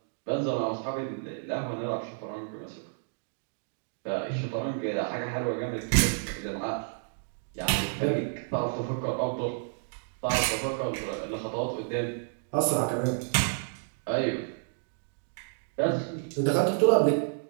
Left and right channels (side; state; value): left; silent; digital silence